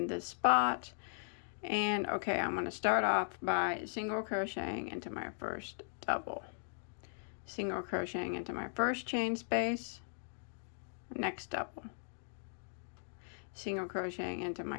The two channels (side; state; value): right; silent; digital silence